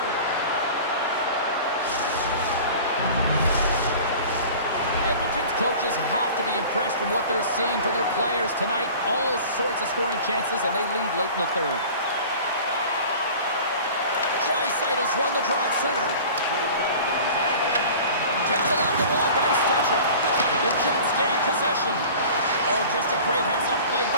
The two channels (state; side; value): inverted; both; correlation -0.41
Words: possessions. Coaches have to be impressed from what they're seeing from their players tonight. All sorts of scoring chances, and they lead late in the third. Drysdale's won the draw at center. Tipped along the wall by Stetcher. The Jets gain possession. Oh, just a great heads-up play